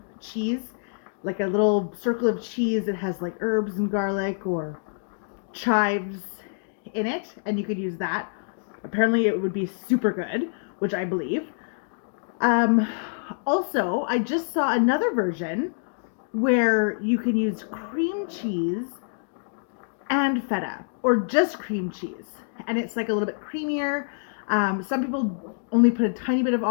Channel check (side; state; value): right; silent; digital silence